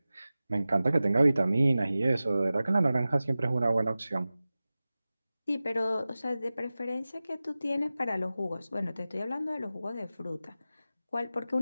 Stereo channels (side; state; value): both; inverted; correlation -0.96